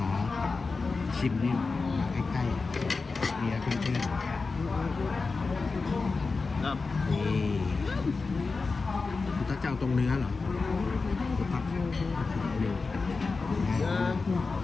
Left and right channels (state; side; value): quieter; right; 4.2 dB